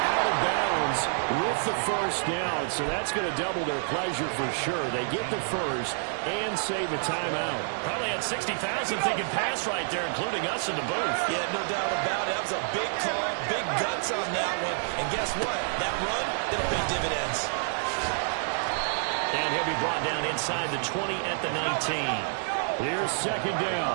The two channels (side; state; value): left; silent; 59 dB below the other